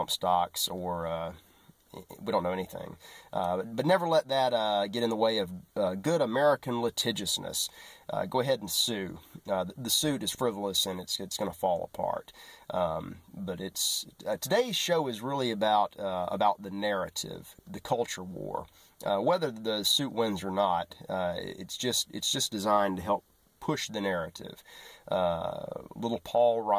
stocks, or we don't know anything. But never let that get in the way of good American litigiousness. Go ahead and sue. The suit is frivolous and it's going to fall apart. But today's show is really about the narrative, the culture war. Whether the suit wins or not, it's just designed to help push the narrative. Little Paul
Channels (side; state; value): both; identical; correlation 1.00